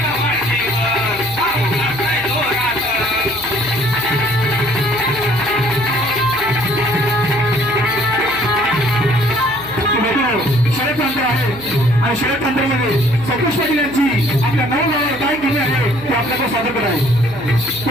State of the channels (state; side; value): noise; right; hum, 17 dB below the sound